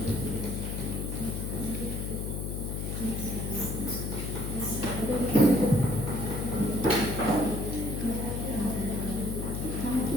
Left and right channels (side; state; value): left; noise; hum, 3 dB below the sound